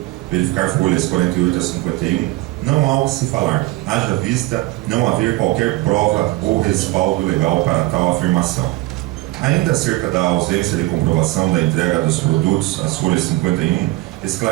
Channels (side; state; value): left; quieter; 19.2 dB